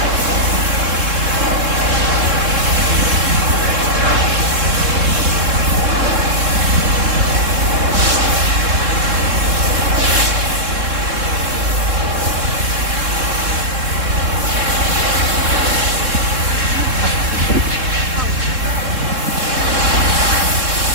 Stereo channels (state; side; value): late; left; 3.7 ms